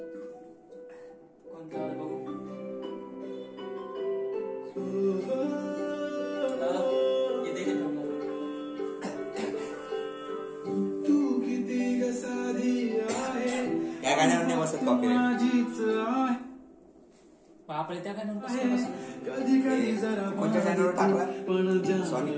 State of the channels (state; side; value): identical; both; correlation 1.00